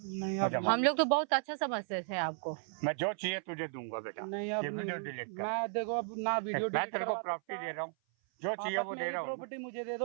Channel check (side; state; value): left; silent; 54 dB below the other